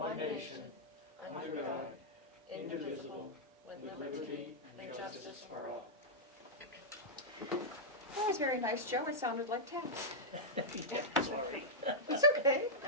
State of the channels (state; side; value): normal; both; correlation -0.08